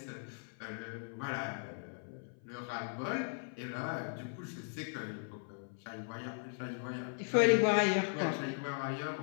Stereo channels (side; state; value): right; silent; 52 dB below the other